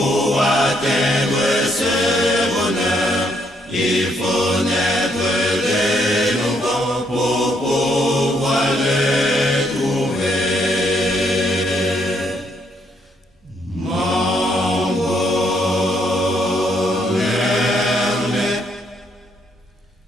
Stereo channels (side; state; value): both; normal; correlation 0.72